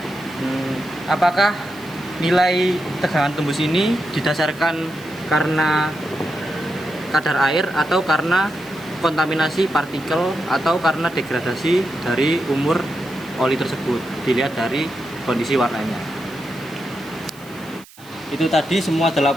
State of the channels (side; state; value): right; noise; hiss, 23 dB below the sound